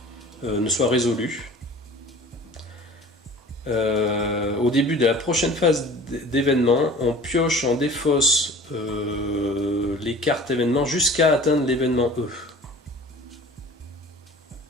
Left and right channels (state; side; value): normal; both; correlation 0.43